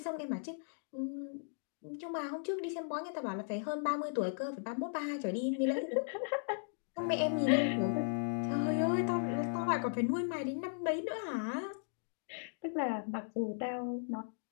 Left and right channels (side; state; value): right; silent; digital silence